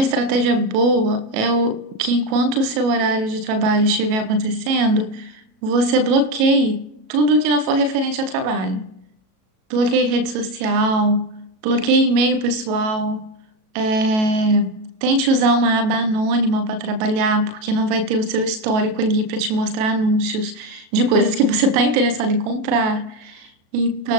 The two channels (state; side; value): late; left; 37 ms